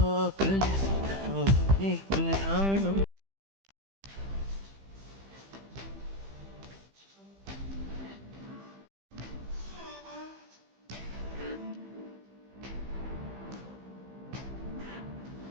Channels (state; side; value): late; left; 15 ms